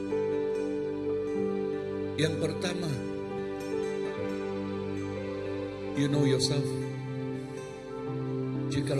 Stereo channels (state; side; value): identical; both; correlation 1.00